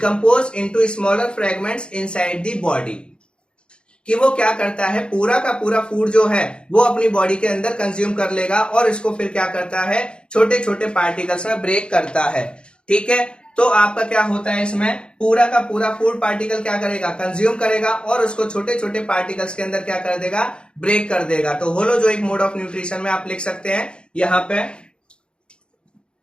into smaller fragments inside the body, कि वो क्या करता है, पूरा का पूरा फूड जो है वो अपनी बॉडी के अंदर कंज्यूम कर लेगा और इसको फिर क्या करता है, छोटे छोटे पार्टिकल्स में ब्रेक करता है, ठीक है। तो आपका क्या होता है, इसमें पूरा का पूरा फूड पार्टिकल क्या करेगा, कंज्यूम करेगा और उसको छोटे छोटे पार्टिकल्स के अंदर क्या कर देगा, ब्रेक कर देगा। तो होलोजोइक मोड ऑफ न्यूट्रिशन में आप लिख सकते हैं यहां पे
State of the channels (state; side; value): late; right; 0.053 ms